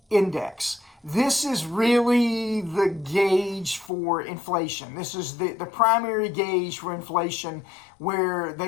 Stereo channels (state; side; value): drops out; right; at 3.9 s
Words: Index. This is really the gauge for inflation. This is the primary gauge for inflation, where